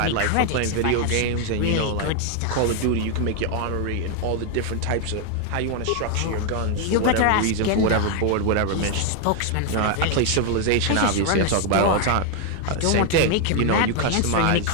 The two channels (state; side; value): different; both; correlation 0.01